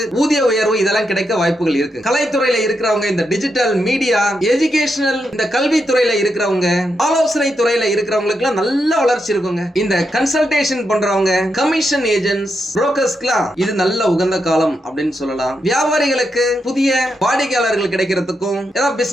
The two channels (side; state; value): both; normal; correlation 0.83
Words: ஊதிய உயர்வு இதெல்லாம் கிடைக்க வாய்ப்புகள் இருக்கு. கலைத்துறையில இருக்கிறவங்க, இந்த டிஜிட்டல் மீடியா, எஜுகேஷனல், இந்த கல்வித்துறையில இருக்கிறவங்க, ஆலோசனை துறையில இருக்கிறவங்களுக்கு நல்ல வளர்ச்சி இருக்குங்க. இந்த கன்சல்டேஷன் பண்றவங்க, கமிஷன் ஏஜென்ட்ஸ், புரோக்கர்ஸ்க்குலாம் இது நல்ல உகந்த காலம் அப்படின்னு சொல்லலாம். வியாபாரிகளுக்கு புதிய வாடிக்கையாளர்கள் கிடைக்கிறதுக்கும், ஏதாவது